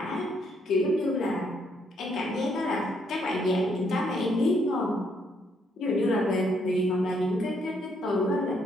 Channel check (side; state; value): both; normal; correlation 0.72